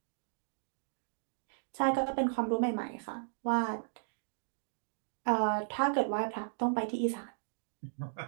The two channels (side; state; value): left; silent; digital silence